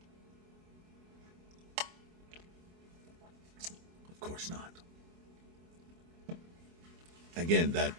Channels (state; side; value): late; left; 24 ms